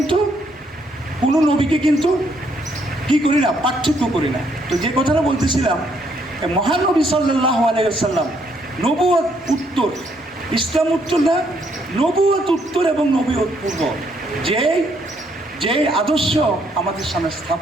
কোনো নবীকে কিন্তু কি করি না, পার্থক্য করি না। তো যে কথাটা বলতেছিলাম, মহানবী সাল্লাল্লাহু আলাইহি ওয়াসাল্লাম নবুয়ত উত্তর, ইসলাম উত্তর না, নবুয়ত উত্তর এবং নবুয়ত পূর্ব যে আদর্শ আমাদের সামনে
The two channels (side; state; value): both; normal; correlation 0.71